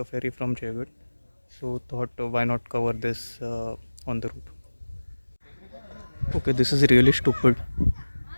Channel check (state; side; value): inverted; both; correlation -1.00